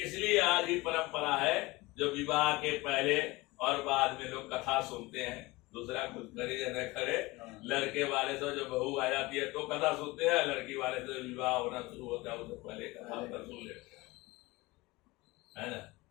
आज भी परंपरा है, जो विवाह के पहले और बाद में लोग कथा सुनते हैं, दूसरा कुछ करे या न करे, लड़के वाले से जो बहू आ जाती है तो कथा सुनते हैं, लड़की वाले से विवाह होना शुरू होता है उससे पहले कथा सुन लेते हैं, है ना।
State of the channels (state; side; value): quieter; right; 21.8 dB